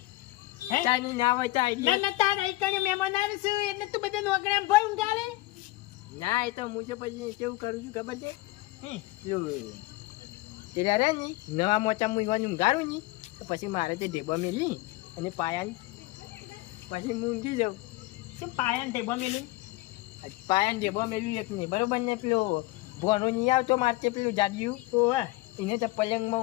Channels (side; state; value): right; quieter; 19.4 dB